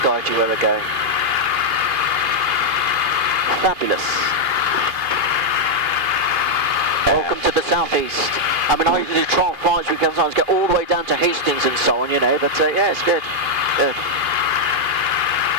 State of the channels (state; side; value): late; left; 2.8 ms